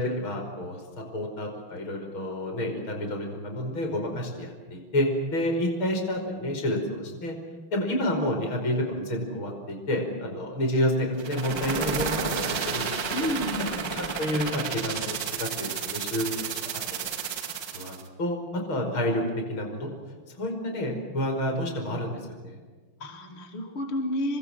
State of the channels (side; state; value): right; late; 5.6 ms